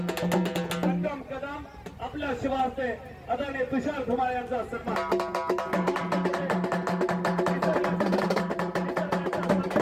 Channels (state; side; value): identical; both; correlation 1.00